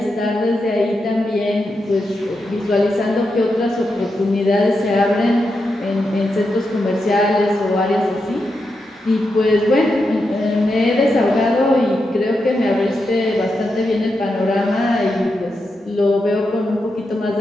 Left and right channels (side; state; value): both; normal; correlation 0.86